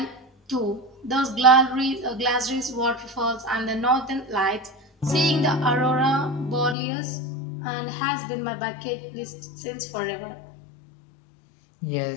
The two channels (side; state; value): right; drops out; at 6.8 s